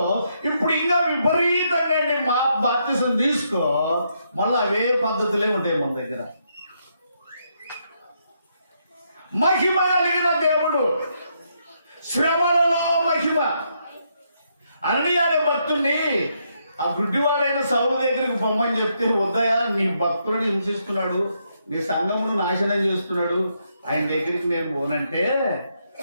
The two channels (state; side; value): inverted; both; correlation -0.77